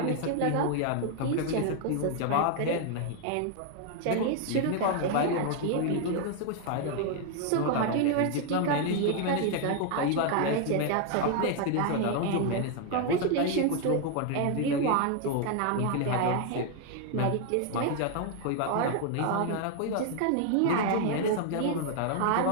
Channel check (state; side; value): different; both; correlation 0.00